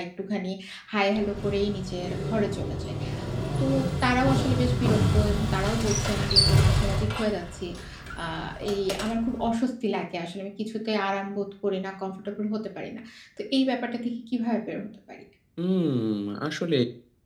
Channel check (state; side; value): identical; both; correlation 1.00